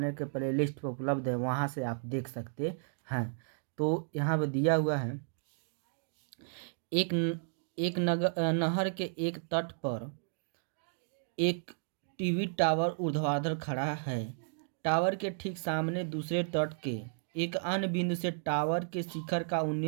के प्लेलिस्ट पर उपलब्ध है, वहां से आप देख सकते हैं। तो यहाँ पे दिया हुआ है एक नहर के एक तट पर एक टीवी टावर ऊर्ध्वाधर खड़ा है। टावर के ठीक सामने दूसरे तट के एक अन्य बिंदु से टावर के शिखर का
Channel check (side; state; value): left; silent; digital silence